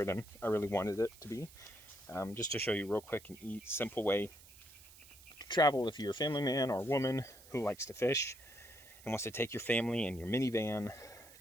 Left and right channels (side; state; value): right; noise; hiss, 21 dB below the sound